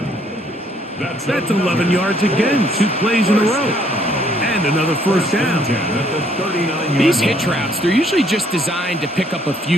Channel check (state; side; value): normal; both; correlation 0.65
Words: That's 11 yards again, 2 plays in a row. And another first down. These hitch routes, they're usually just designed to pick up a